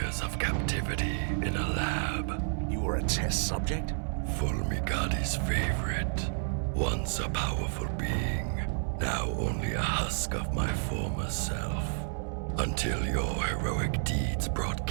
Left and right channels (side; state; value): left; silent; digital silence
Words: of captivity in a lab. You were a test subject? Fulmigadi's favorite. Once a powerful being, now only a husk of my former self. Until your heroic deeds brought